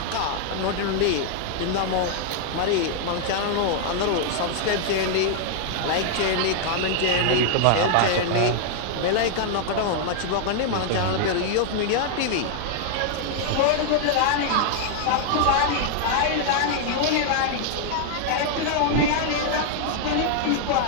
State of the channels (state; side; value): different; both; correlation 0.00